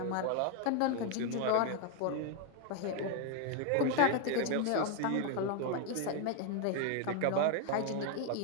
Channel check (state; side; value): different; both; correlation 0.01